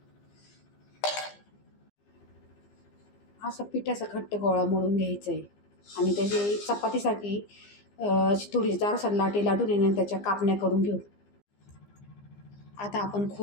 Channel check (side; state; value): right; late; 15 ms